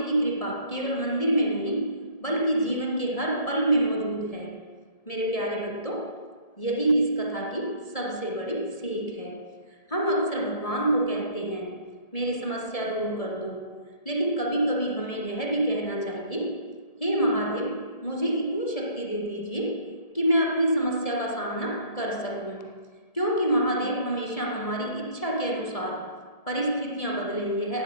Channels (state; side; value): late; right; 1.7 ms